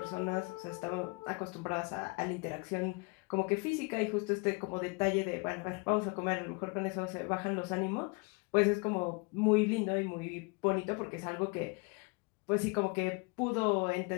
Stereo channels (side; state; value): right; quieter; 30.7 dB